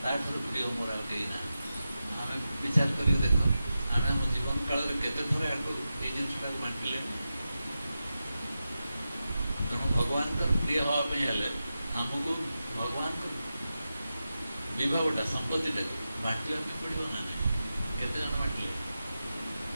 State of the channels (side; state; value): both; inverted; correlation -0.91